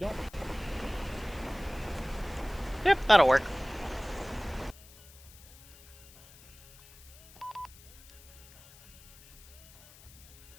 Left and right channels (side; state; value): left; noise; hiss, 22 dB below the sound